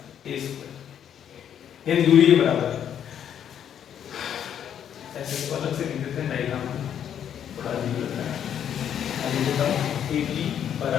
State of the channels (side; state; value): right; quieter; 9.3 dB